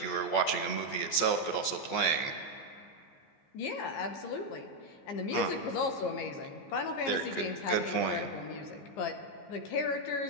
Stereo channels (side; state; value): right; late; 14 ms